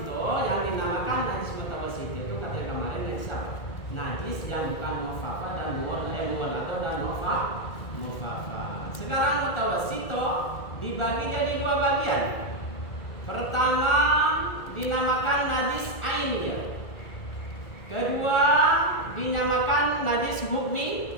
yang dinamakan najis mutawassito itu kata yang kemarin najis apa? Najis yang bukan mufafa dan muwalado dan mufafa. Sekarang mutawassito dibagi jadi dua bagian. Pertama dinamakan najis ainiyah. Kedua dinamakan najis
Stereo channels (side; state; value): right; late; 2.0 ms